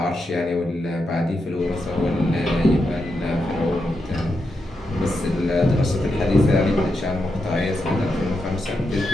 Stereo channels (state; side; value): normal; both; correlation 0.85